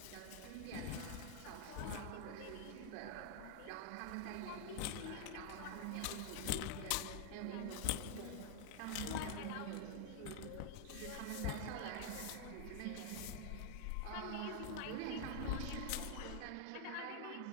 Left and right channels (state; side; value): different; both; correlation 0.00